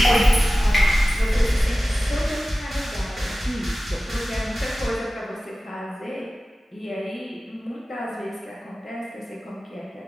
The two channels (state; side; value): normal; both; correlation 0.96